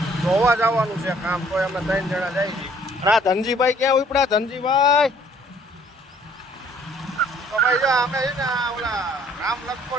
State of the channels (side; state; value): both; normal; correlation 0.59